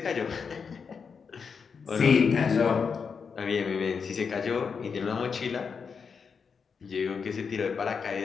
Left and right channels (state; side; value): quieter; right; 5.9 dB